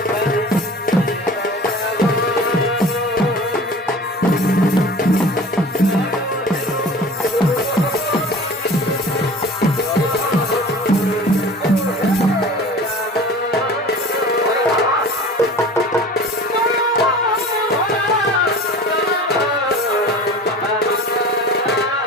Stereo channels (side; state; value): both; normal; correlation 0.40